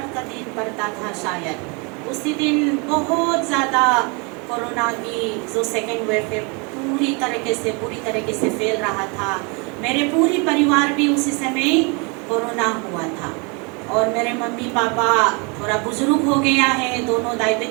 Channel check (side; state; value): left; quieter; 32.0 dB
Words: का दिन पड़ता था शायद, उसी दिन बहुत ज़्यादा कोरोना की जो सेकेंड वेव है पूरी तरीके से फैल रहा था। मेरे पूरी परिवार भी उसी समय कोरोना हुआ था और मेरे मम्मी पापा थोड़ा बुजुर्ग हो गया है, दोनों